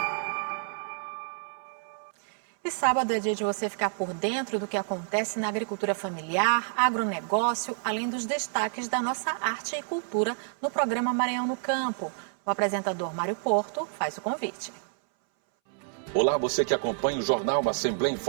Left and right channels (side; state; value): left; silent; 59 dB below the other